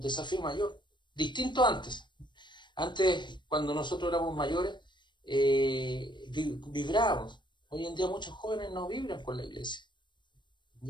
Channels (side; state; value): right; late; 0.22 ms